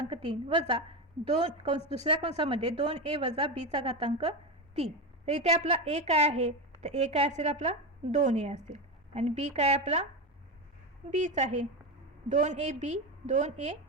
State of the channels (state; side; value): normal; both; correlation 0.16